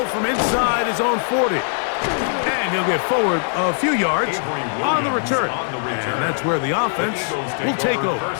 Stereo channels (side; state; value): right; silent; 64 dB below the other